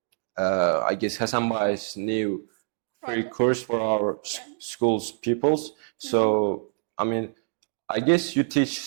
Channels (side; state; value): left; silent; digital silence